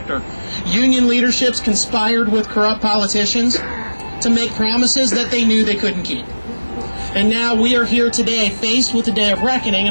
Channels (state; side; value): inverted; both; correlation -1.00